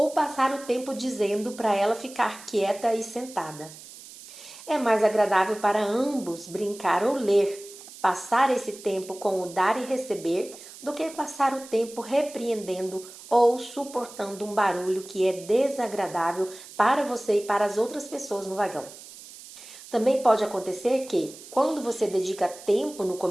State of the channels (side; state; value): right; noise; hiss, 17 dB below the sound